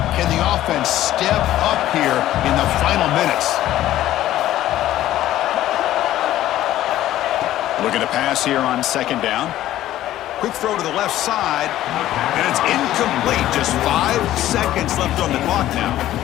Can the offense step up here in the final minutes? Looking to pass here on second down. Quick throw to the left side, and it's incomplete. Just 5 seconds left on the clock now.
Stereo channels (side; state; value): right; quieter; 13.7 dB